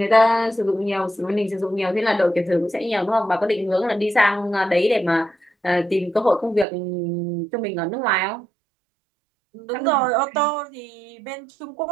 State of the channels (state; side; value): drops out; left; at 6.7 s